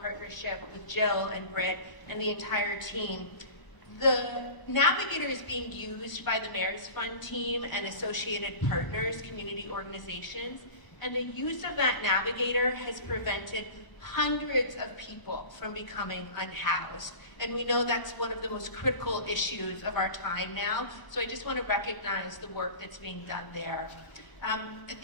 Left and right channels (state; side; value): late; right; 1.0 ms